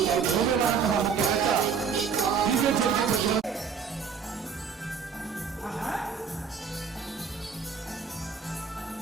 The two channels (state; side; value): quieter; left; 6.3 dB